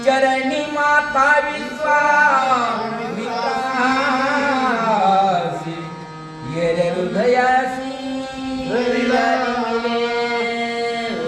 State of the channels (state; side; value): identical; both; correlation 1.00